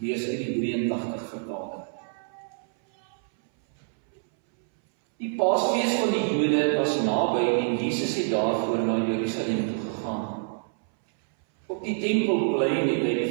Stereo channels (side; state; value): left; silent; 61 dB below the other